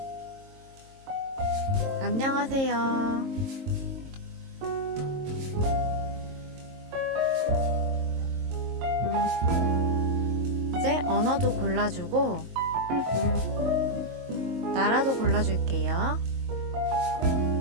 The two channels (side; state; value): left; late; 22 ms